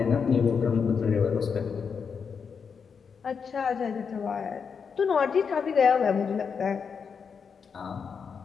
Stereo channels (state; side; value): quieter; right; 6.2 dB